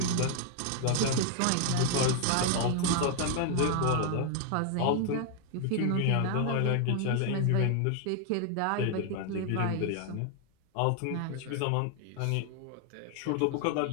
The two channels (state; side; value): different; both; correlation 0.00